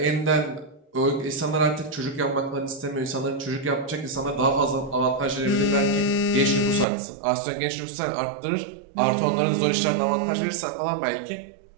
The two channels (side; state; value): left; drops out; at 6.9 s